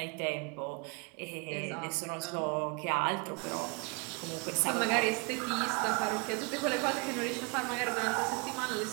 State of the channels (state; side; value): quieter; left; 30.8 dB